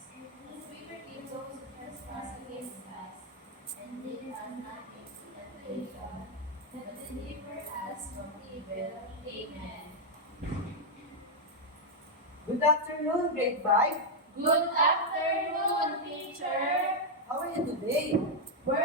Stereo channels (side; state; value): both; normal; correlation -0.02